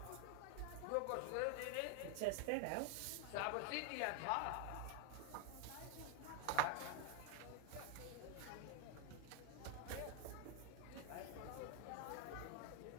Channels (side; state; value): both; different; correlation 0.01